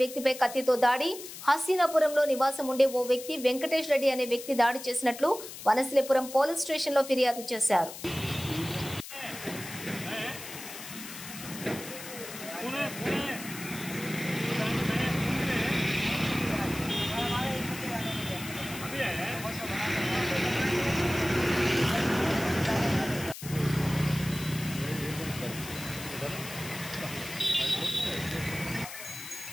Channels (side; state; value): left; noise; hiss, 12 dB below the sound